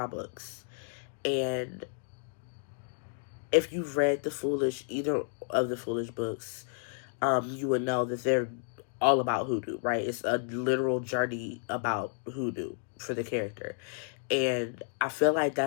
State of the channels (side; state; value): right; silent; digital silence